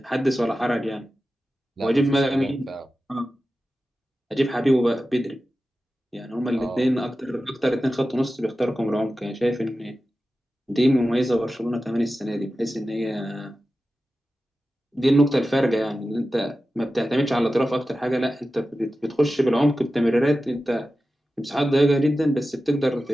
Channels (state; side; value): normal; both; correlation 0.94